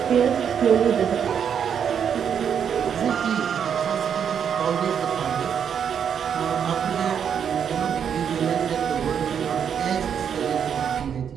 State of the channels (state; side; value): quieter; left; 7.9 dB